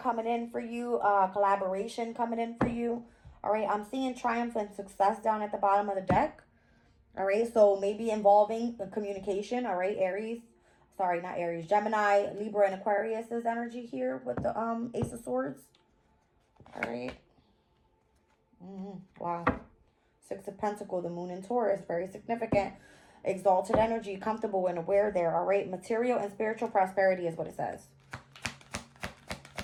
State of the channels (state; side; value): identical; both; correlation 1.00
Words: in for you, collaboration coming in for you. All right. I'm seeing triumph and success down at the bottom of the deck. All right. So maybe involving the communication. All right. Aries. Sorry, not Aries. Gemini, Libra, and Aquarius is energy here with the Ace of Swords. All right. Wow. Six of Pentacles, the Moon in Taurus. Very significant. Exalted energy, comfortable and aware there. All right. Material and spiritual prosperity is what it says.